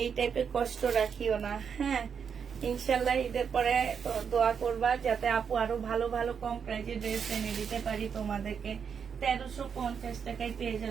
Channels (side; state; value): left; quieter; 6.9 dB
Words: এই টাইপের কষ্ট রাখিও না। হ্যাঁ, ইনশাল্লাহ ঈদের পরে দোয়া করবা যাতে আপু আরো ভালো ভালো কম প্রাইজে ড্রেস এনে দিতে পারি তোমাদেরকে। 1350 টাকায় পেয়ে